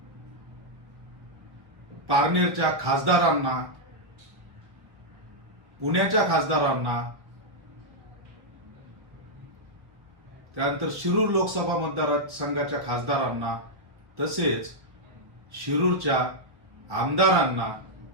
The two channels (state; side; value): late; left; 1.0 ms